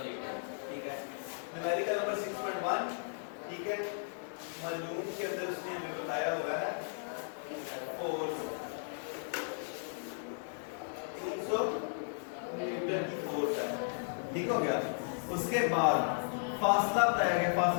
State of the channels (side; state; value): right; silent; digital silence